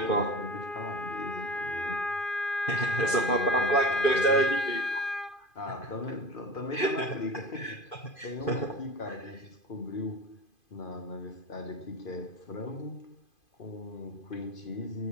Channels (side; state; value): right; late; 2.5 ms